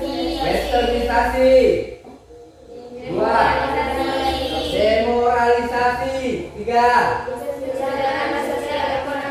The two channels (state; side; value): identical; both; correlation 1.00